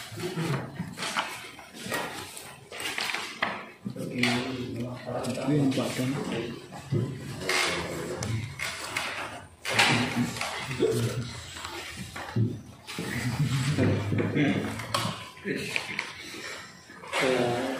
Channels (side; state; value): both; identical; correlation 1.00